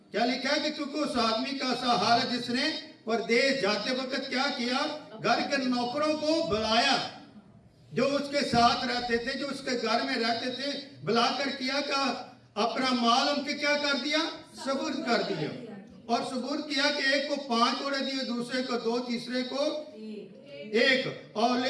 क्या लिखा है कि क्योंकि उस आदमी का सा हाल है जिसने परदेश जाते वक्त क्या किया? घर के नौकरों को बुलाया, जो उसके साथ रहते थे, जो उसके घर में रहते थे, बुलाकर किया का अपना माल उनके क्या कर दिया? सुपुर्द कर दिया। और सुपुर्द किया कि एक को 5 तोड़े दिए, दूसरे को 2, तीसरे को 1। और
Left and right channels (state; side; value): identical; both; correlation 1.00